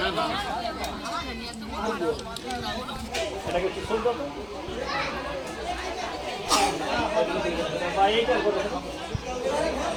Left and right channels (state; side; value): identical; both; correlation 1.00